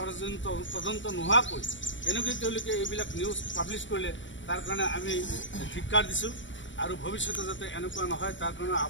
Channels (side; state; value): right; late; 0.55 ms